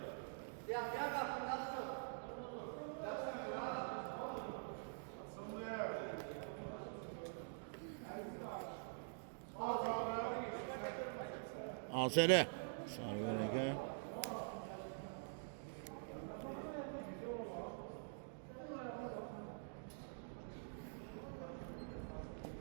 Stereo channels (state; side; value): silent; left; digital silence